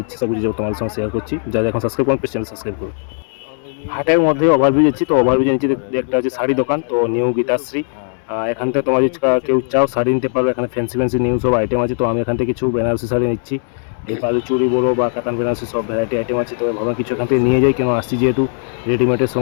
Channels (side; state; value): right; silent; digital silence